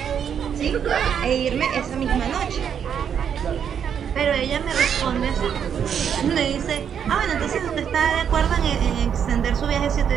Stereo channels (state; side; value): quieter; left; 8.1 dB